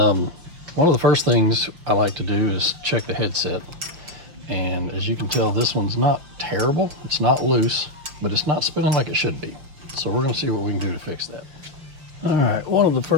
of the first things I like to do is check the headset. And as you can tell, this one's not terrible. It's not loose, but it's not spinning like it should be. So we're gonna see what we can do to fix that. All right, one of the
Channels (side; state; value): left; late; 6.1 ms